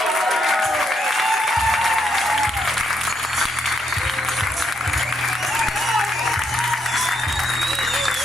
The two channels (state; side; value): normal; both; correlation 0.76